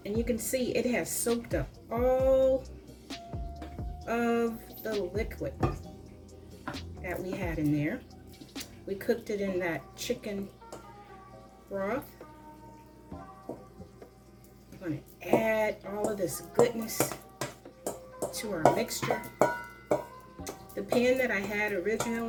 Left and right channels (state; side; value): identical; both; correlation 1.00